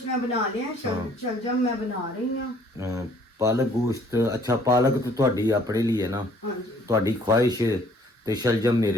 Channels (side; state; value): both; normal; correlation 0.59